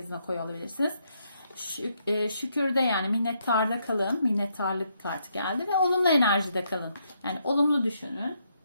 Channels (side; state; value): both; inverted; correlation -0.76